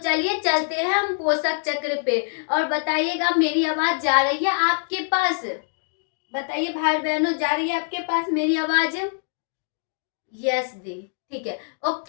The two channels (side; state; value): right; silent; digital silence